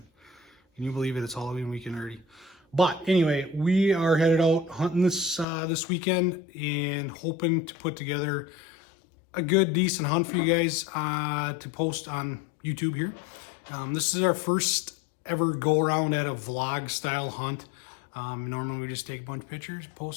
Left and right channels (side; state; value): right; drops out; at 5.5 s